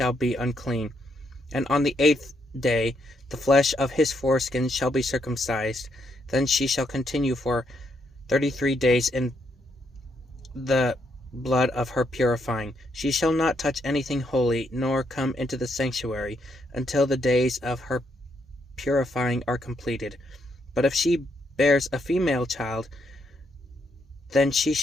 be unclean. And on the 8th day the flesh of his foreskin shall be circumcised. Then she shall continue for 33 days in the blood of her purifying. She shall not touch anything holy, nor come into the sanctuary, until the days of her purifying are completed. But if she bears a female child, then she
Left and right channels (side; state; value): both; normal; correlation 0.77